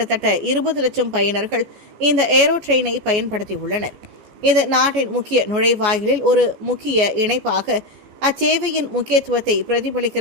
20 லட்சம் பயனர்கள் இந்த ஏரோ ட்ரெயினை பயன்படுத்தியுள்ளனர். இது நாட்டின் முக்கிய நுழைவாயிலில் ஒரு முக்கிய இணைப்பாக அச்சேவையின் முக்கியத்துவத்தை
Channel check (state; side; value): late; left; 14 ms